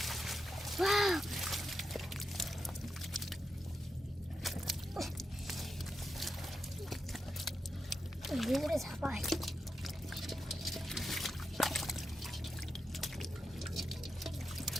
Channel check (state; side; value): normal; both; correlation 0.87